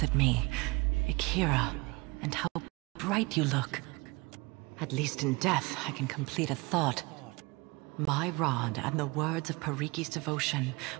at me. Akira. And how bright you look. At least in death, I can complete a thought. My rod and the words of Pariki's devotion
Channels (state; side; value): quieter; left; 25.2 dB